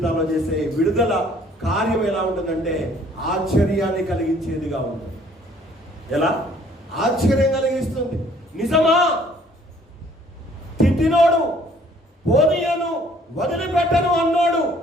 చేసే విడుదల కార్యం ఎలా ఉంటుందంటే ఆశ్చర్యాన్ని కలిగించేదిగా ఉంటుంది. ఎలా? ఆశ్చర్యం కలిగిస్తుంది. నిజమా? తిట్టినోడు, పోనీయను, వదిలిపెట్టను అన్నాడు.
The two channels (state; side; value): normal; both; correlation 0.59